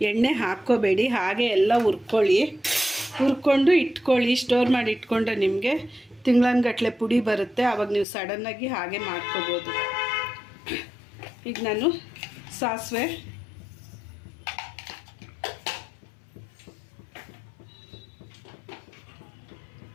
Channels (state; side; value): drops out; right; at 8.1 s